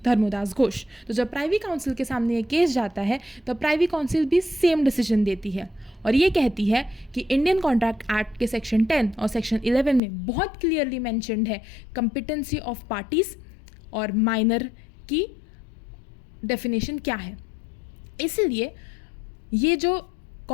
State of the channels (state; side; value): drops out; right; at 10.0 s